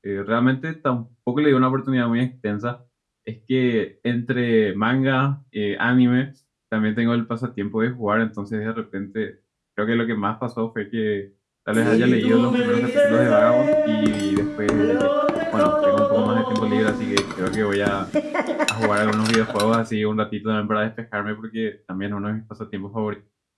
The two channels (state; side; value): identical; both; correlation 1.00